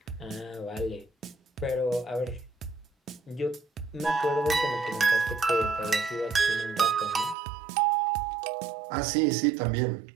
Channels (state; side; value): drops out; left; at 7.4 s